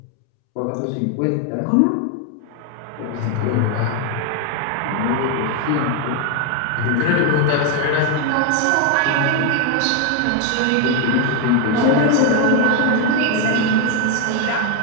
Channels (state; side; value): different; both; correlation 0.01